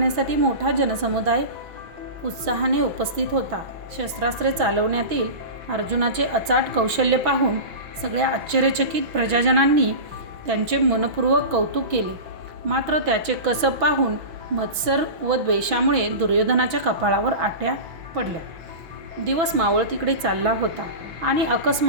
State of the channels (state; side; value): late; left; 6.2 ms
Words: मोठा जनसमुदाय उत्साहाने उपस्थित होता. शस्त्रास्त्रे चालवण्यातील अर्जुनाचे अचाट कौशल्य पाहून सगळ्या आश्चर्यचकित प्रजाजनांनी त्यांचे मनपूर्वक कौतुक केले. मात्र त्याचे कसब पाहून मत्सर व द्वेषामुळे दुर्योधनाच्या कपाळावर आट्या पडल्या. दिवस मावळतीकडे चालला होता आणि